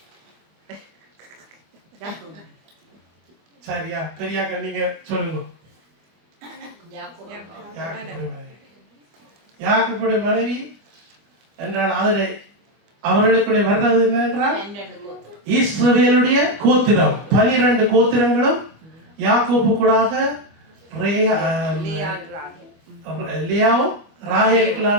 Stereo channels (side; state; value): left; late; 25 ms